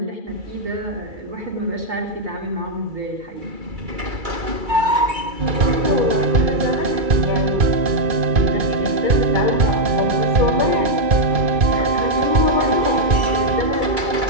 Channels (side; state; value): left; late; 2.3 ms